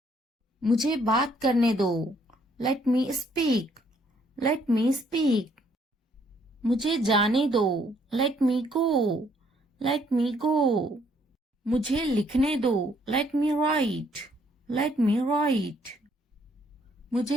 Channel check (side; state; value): both; normal; correlation 0.67